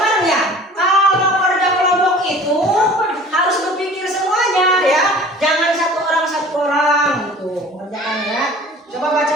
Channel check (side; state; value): both; normal; correlation 0.45